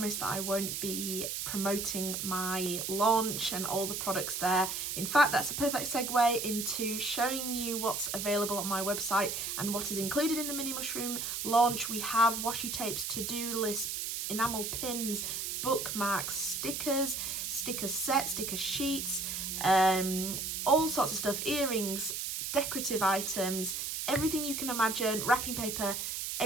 that I won't be promoting my launch and all the products there. In fact, that's a perfect segue into showing you what's available on my website and what is included in the mini mushroom launch. We have washi tapes, to-do lists, enamel pins, bookmarks, stickers, sticker sets, sticker sheets, all sorts of stuff, earrings, decorative items, everything you can imagine, wrapping paper,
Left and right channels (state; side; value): noise; right; hiss, 3 dB below the sound